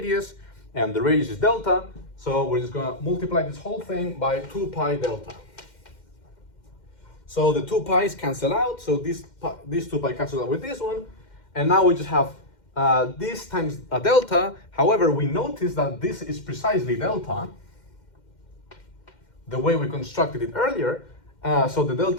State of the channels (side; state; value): right; late; 2.1 ms